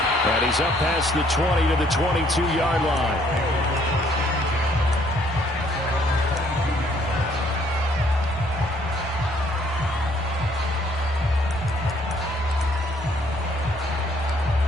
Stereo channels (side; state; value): both; normal; correlation 0.64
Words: And he's up past the 20 to the 22-yard line.